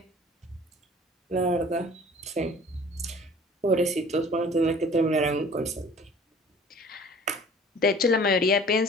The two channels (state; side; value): normal; both; correlation 0.49